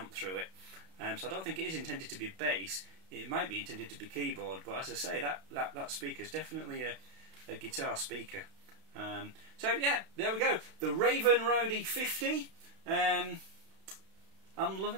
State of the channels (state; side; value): late; left; 32 ms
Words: through it. So I don't think it is intended to be bass. It might be intended to be keyboard, but as I say, that speaker is definitely a guitar speaker. So yeah, there we go. The Raven Roadie 50. I'm